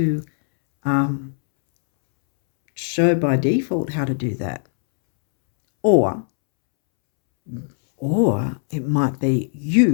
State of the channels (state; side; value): silent; right; 66 dB below the other